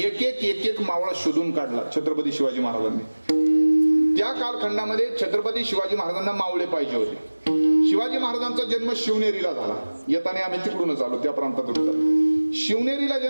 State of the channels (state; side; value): inverted; both; correlation -1.00